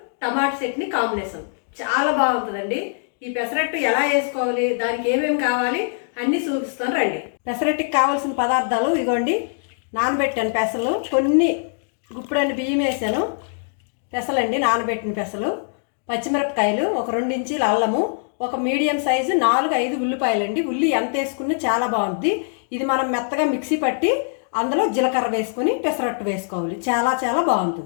టమాటా చట్నీ కాంబినేషన్. చాలా బాగుంటుందండి. ఈ పెసరట్టు ఎలా వేసుకోవాలి, దానికి ఏమేమి కావాలి అన్నీ చూపిస్తాను రండి. పెసరట్టుకి కావాల్సిన పదార్థాలు ఇగోండి. నానబెట్టాను పెసలు, కొన్ని గుప్పుడన్ని బియ్యం వేసాను. పెసలండి, నానబెట్టిన పెసలు, పచ్చిమిరపకాయలు, ఒక 2 ఇంచీల అల్లము, ఒక మీడియం సైజు 4-5 ఉల్లిపాయలండి. ఉల్లి ఎంత వేసుకున్నా చాలా బాగుంటుంది. ఇది మనం మెత్తగా మిక్సీ పట్టి అందులో జీలకర్ర వేసుకొని పెసరట్టు వేసుకోవాలి. చాలా చాలా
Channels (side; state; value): right; silent; digital silence